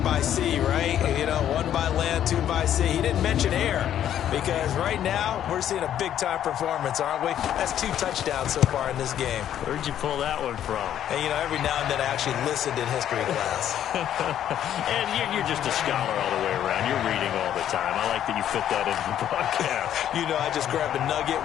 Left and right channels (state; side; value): quieter; right; 10.6 dB